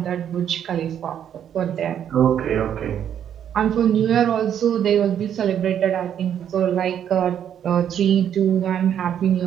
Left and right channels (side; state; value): left; quieter; 9.4 dB